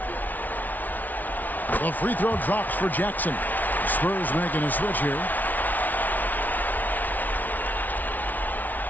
The free throw drops for Jackson. Spurs making a switch here.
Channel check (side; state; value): right; late; 0.079 ms